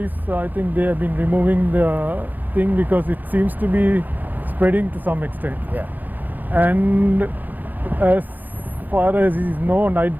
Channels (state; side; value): late; left; 0.088 ms